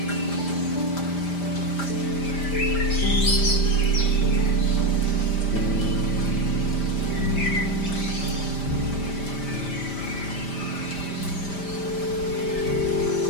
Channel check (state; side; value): late; right; 5.0 ms